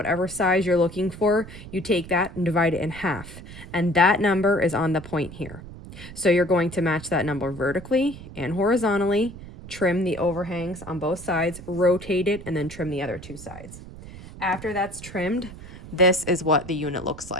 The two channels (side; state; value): right; noise; rumble, 15 dB below the sound